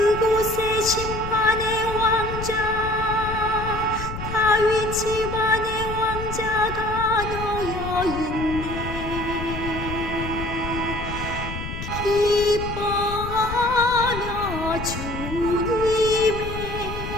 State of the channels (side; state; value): left; noise; rumble, 7 dB below the sound